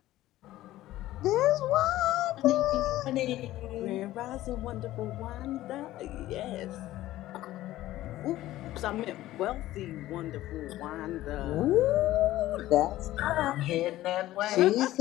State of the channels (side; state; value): right; quieter; 15.3 dB